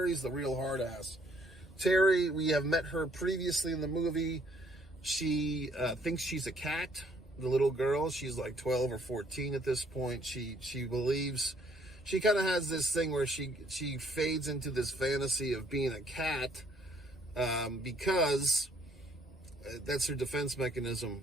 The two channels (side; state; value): both; normal; correlation 0.65